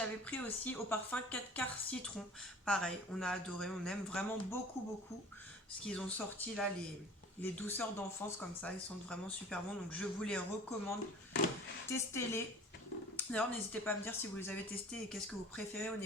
pris aussi au parfum 4 quarts citron. Pareil, on a adoré, on aime vraiment beaucoup ce qu'ils ont sorti là, les douceurs d'enfance comme ça, ils sont vraiment super bons. Donc je vous les recommande, testez-les. D'ailleurs, n'hésitez pas à me dire si vous les avez testés et qu'est-ce que vous préférez au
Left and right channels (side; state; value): both; normal; correlation 0.45